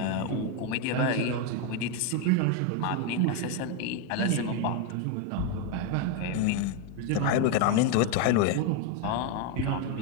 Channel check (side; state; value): both; different; correlation 0.02